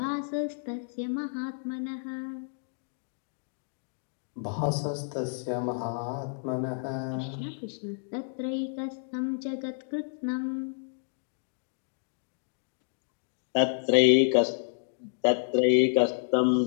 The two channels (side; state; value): right; silent; digital silence